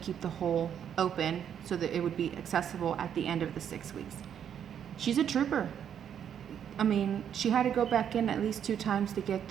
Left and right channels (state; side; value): quieter; left; 8.9 dB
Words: the hole open so that it would be accessible at the end of the 6 weeks. She's a trooper. I mean, she had to go back in at least 2 times to get